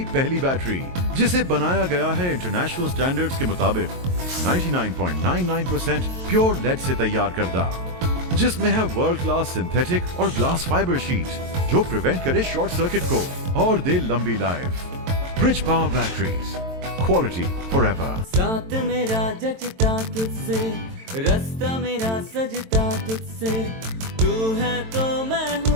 پہلی بیٹری، جسے بنایا گیا ہے انٹرنیشنل سٹینڈرڈز کے مطابق 99.99% پیور لیڈ سے تیار کردہ، جس میں ہے ورلڈ کلاس سنتھیٹک اور گلاس فائبر شیٹ جو پریونٹ کرے شارٹ سرکٹ کو اور دے لمبی life. Bridge power batteries, quality for ever. ساتھ میرا جچتا تجھ سے، رستہ میرا سجتا تجھ سے، تو ہے تو میں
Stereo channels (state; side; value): late; left; 22 ms